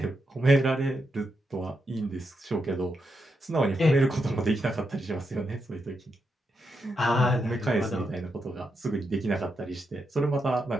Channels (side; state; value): both; normal; correlation 0.84